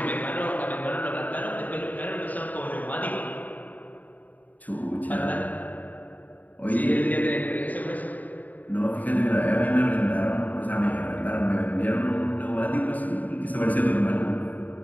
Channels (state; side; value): late; right; 0.078 ms